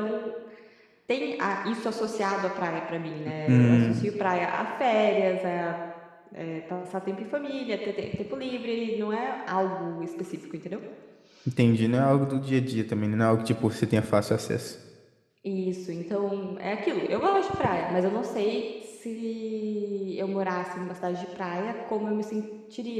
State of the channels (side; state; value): both; identical; correlation 1.00